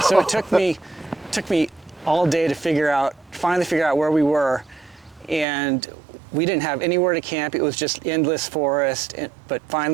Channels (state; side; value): drops out; left; at 5.5 s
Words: it took me all day to finally figure out where we were. And we didn't have anywhere to camp. It was just endless forest. But